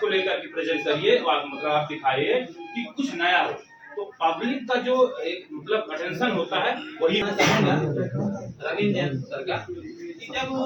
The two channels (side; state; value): both; identical; correlation 1.00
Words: लेकर के प्रेजेंट करिए, मतलब आप दिखाइए कि कुछ नया हो, तो पब्लिक का जो एक मतलब अटेंशन होता है वही। रविंद्र जैन सर का, जब